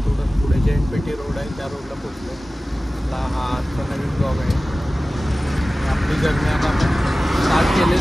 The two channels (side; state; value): both; normal; correlation 0.97